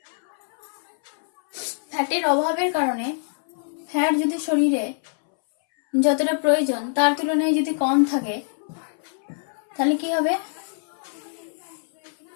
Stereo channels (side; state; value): right; silent; 62 dB below the other